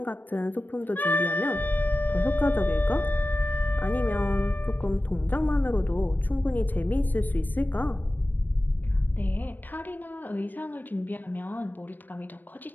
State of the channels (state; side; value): late; right; 0.089 ms